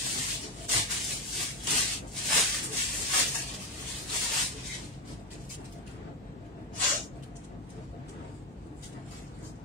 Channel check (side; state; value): both; normal; correlation 0.11